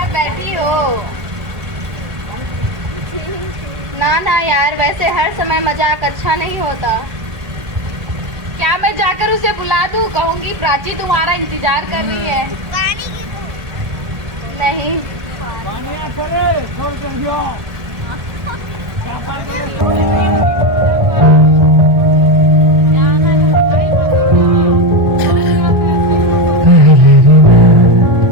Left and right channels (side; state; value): left; late; 1.3 ms